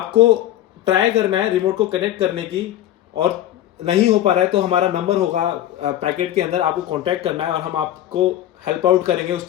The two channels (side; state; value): right; quieter; 12.9 dB